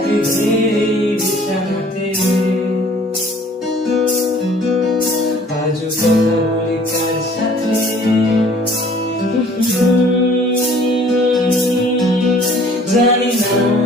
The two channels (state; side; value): normal; both; correlation 0.54